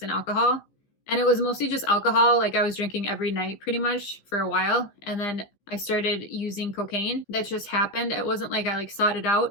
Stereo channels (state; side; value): late; right; 15 ms